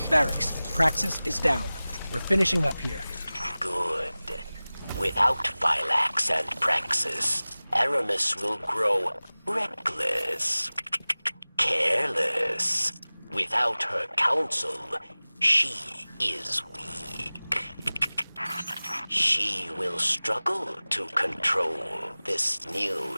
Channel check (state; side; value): inverted; both; correlation -0.99